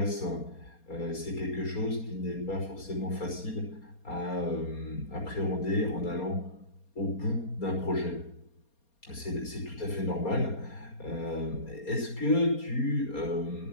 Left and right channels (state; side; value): late; right; 4.3 ms